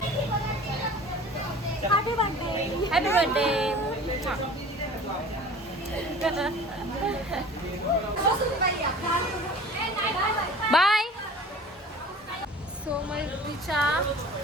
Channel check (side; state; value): both; normal; correlation 0.43